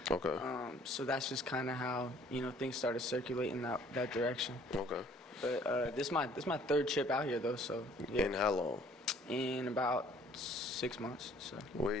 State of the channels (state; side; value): normal; both; correlation 0.58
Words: Okay. So that's just kind of how, things started circulating that direction. Okay. But this is my third trip out here, though, so. Yeah. In how long? In about 6 months, so. Where